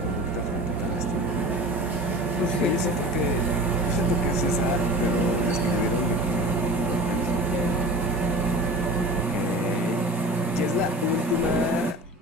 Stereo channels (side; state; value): both; normal; correlation 0.37